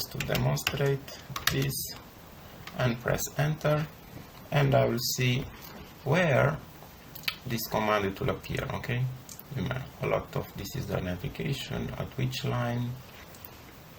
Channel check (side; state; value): both; identical; correlation 1.00